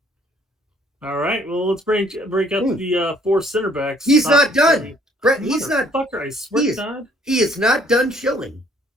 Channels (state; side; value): normal; both; correlation 0.61